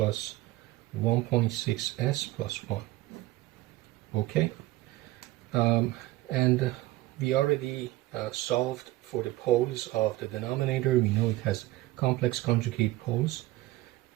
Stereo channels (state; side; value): quieter; left; 17.2 dB